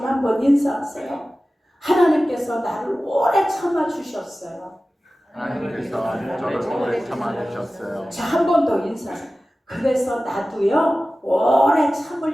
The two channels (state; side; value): normal; both; correlation 0.96